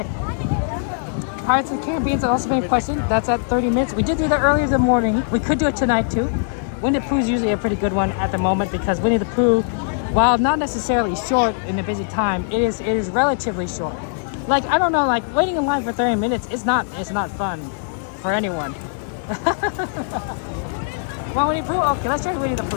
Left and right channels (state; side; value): silent; right; digital silence